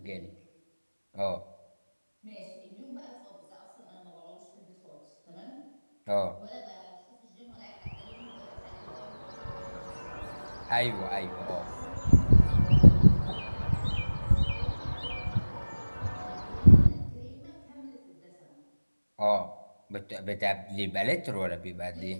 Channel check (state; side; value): inverted; both; correlation -1.00